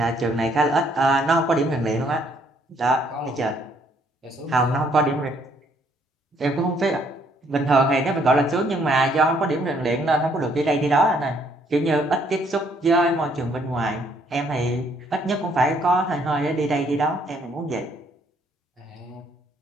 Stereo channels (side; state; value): both; normal; correlation 0.67